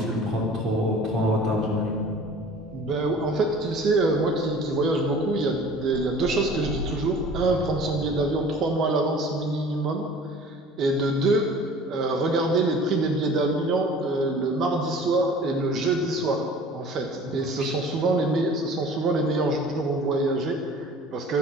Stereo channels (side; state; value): both; normal; correlation 0.46